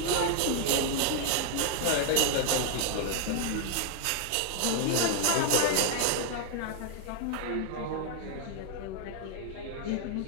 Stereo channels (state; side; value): different; both; correlation 0.00